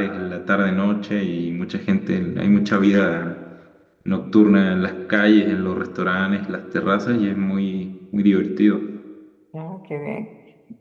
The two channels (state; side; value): identical; both; correlation 1.00